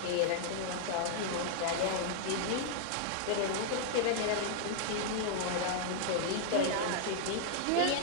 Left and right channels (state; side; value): different; both; correlation -0.01